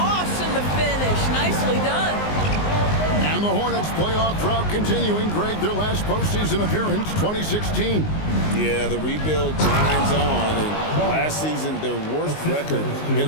in the finish. Nicely done. And the Hornets playoff drought continuing. Greg, their last postseason appearance, 2016. Yeah, the rebuild grinds on, and last season their worst record in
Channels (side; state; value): right; late; 19 ms